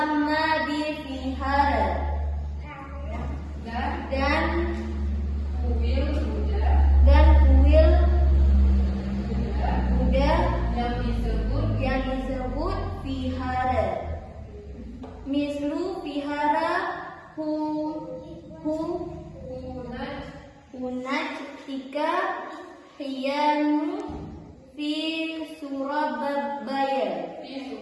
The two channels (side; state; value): both; identical; correlation 1.00